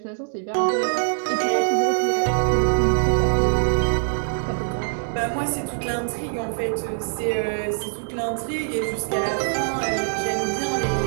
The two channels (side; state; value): left; silent; 63 dB below the other